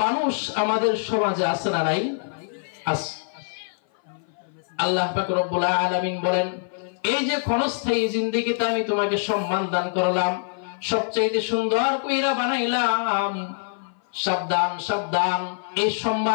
মানুষ আমাদের সমাজে আছে না নাই আছে আল্লাহ পাক রব্বুল আলামিন বলেন এই যে ক্ষণস্থায়ী জিন্দেগিতে আমি তোমাকে সম্মান দান করলাম সবচাইতে সুন্দর কইরা বানাইলাম সাবধান সাবধান এই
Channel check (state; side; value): silent; right; 57 dB below the other